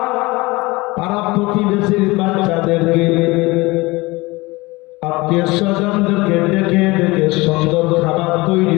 প্রতিবেশীর বাচ্চাদেরকে আত্মীয় স্বজনদেরকে ডেকে ডেকে সুন্দর খাবার তৈরি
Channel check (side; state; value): right; quieter; 22.5 dB